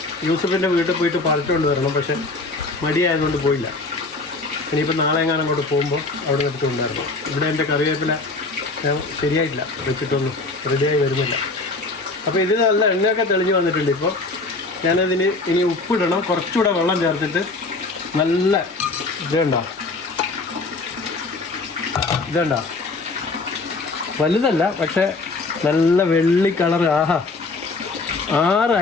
യൂസഫിൻ്റെ വീട്ടിൽ പോയിട്ട് പറിച്ചുകൊണ്ട് വരണം. പക്ഷേ മടിയായതുകൊണ്ട് പോയില്ല. ഇനിയിപ്പോൾ നാളെ എങ്ങാനും അങ്ങോട്ട് പോകുമ്പോൾ അവിടെ എടുത്ത് കൊണ്ടുവരണം. ഇവിടെ എൻ്റെ കറിവേപ്പില ഞാൻ ശരിയായിട്ടില്ല, വെച്ചിട്ടൊന്നും റെഡിയായി വരുന്നില്ല. അപ്പോൾ ഇത് നല്ല എണ്ണയൊക്കെ തെളിഞ്ഞ് വന്നിട്ടുണ്ട്. ഇപ്പോൾ ഞാനതിന് ഇനി ഉപ്പിടണം. കുറച്ചുകൂടെ വെള്ളം ചേർത്തിട്ട് നല്ല ഇതുണ്ടോ വലുതല്ല, പക്ഷേ നല്ല വെള്ളി കളർ. ആഹാ, 6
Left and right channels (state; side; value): quieter; right; 3.5 dB